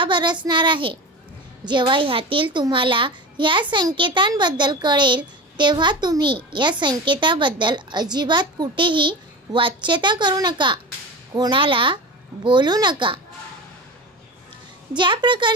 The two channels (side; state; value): both; normal; correlation 0.28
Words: बरसणार आहे। जेव्हा ह्यातील तुम्हाला या संकेतांबद्दल कळेल तेव्हा तुम्ही या संकेताबद्दल अजिबात कुठेही वाच्यता करू नका, कोणाला बोलू नका। ज्या